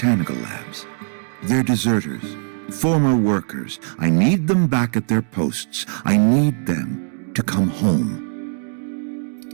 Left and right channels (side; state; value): left; silent; digital silence